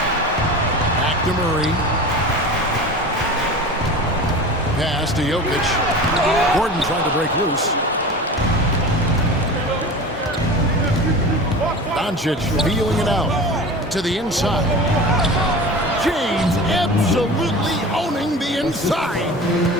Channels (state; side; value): normal; both; correlation 0.34